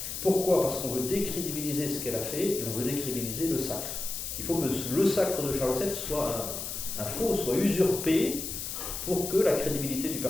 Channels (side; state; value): left; noise; hiss, 5 dB below the sound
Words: Pourquoi? Parce qu'on veut décrédibiliser ce qu'elle a fait et on veut décrédibiliser le sacre. Il faut que le sacre de Charles VII soit un faux, soit usurpé pour que la crédibilité du